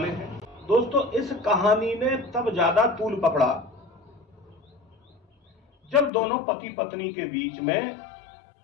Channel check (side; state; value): right; drops out; at 6.1 s